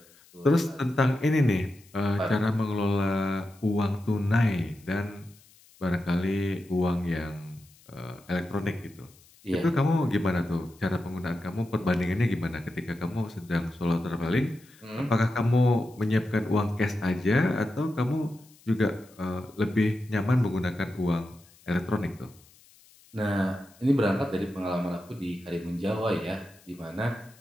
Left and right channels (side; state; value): left; noise; hiss, 27 dB below the sound